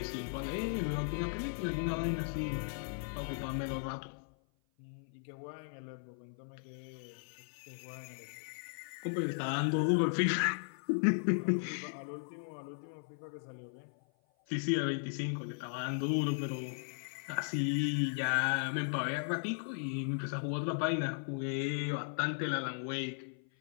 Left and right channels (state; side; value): silent; right; 53 dB below the other